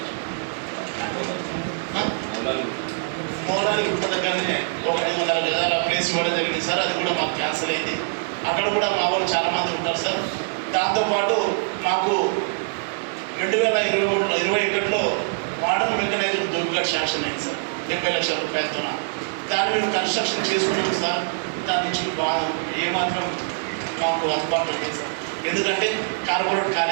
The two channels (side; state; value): left; silent; 63 dB below the other